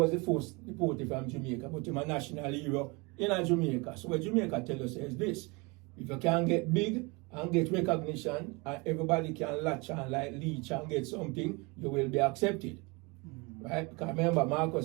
the first deported from Jamaica, but he's a national hero in Jamaica. So what Jamaica tell us is this: if you can get big and get recognition, and everybody can latch on like leech and get something, you will be accepted. Right? Because remember,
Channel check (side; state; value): left; quieter; 27.6 dB